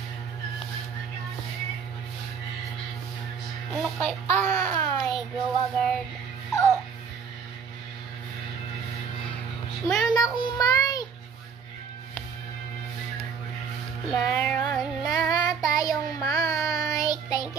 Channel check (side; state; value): left; quieter; 6.3 dB